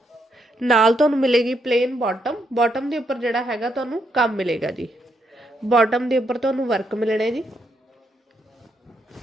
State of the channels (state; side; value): normal; both; correlation 0.78